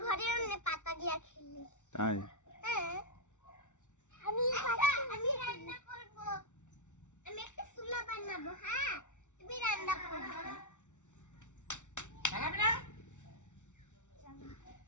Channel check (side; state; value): right; late; 0.85 ms